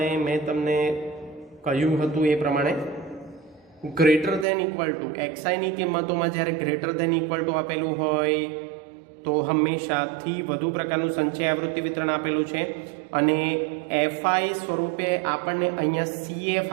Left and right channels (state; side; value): drops out; left; at 4.5 s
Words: મેં તમને કહ્યું હતું એ પ્રમાણે ગ્રેટર ધેન ઇક્વલ ટુ એક્સઆઈની કિંમતોમાં જ્યારે ગ્રેટર ધેન ઇક્વલ ટુ આપેલું હોય તો હંમેશા થી વધુ પ્રકારનું સંચય આવૃત્તિ વિતરણ આપેલું છે અને એફઆઈ સ્વરૂપે આપણને અહીંયા સીએફ